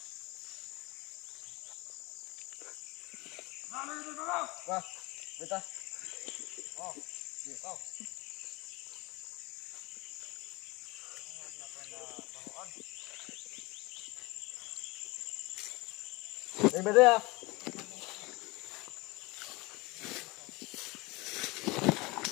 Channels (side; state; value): right; quieter; 23.8 dB